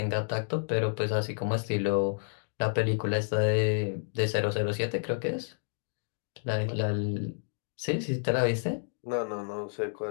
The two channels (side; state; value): right; silent; digital silence